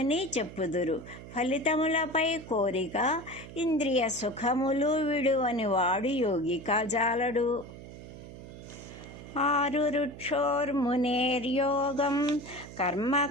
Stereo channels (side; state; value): right; noise; hum, 14 dB below the sound